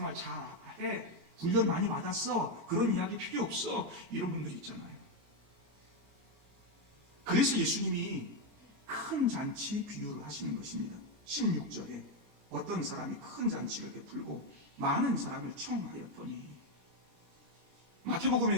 잘해, 훈련 많이 받았어, 그런 이야기 필요 없어, 이런 분들이 있잖아요. 그래서 예수님이 큰 잔치 비유를 하시는 것입니다. 16절에 어떤 사람이 큰 잔치를 베풀고 많은 사람을 청하였더니,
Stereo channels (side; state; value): left; late; 22 ms